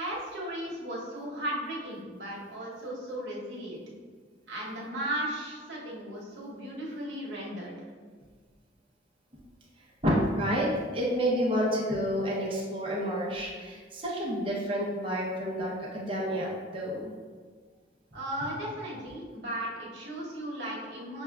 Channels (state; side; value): normal; both; correlation 0.37